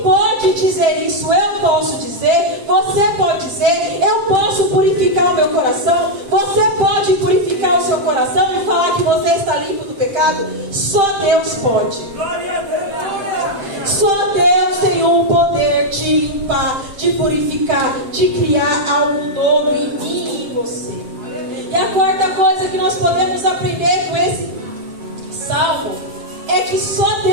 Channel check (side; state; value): left; late; 7.6 ms